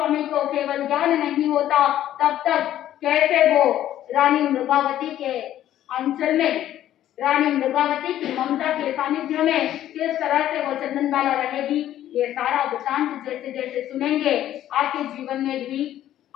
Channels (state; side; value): quieter; right; 12.3 dB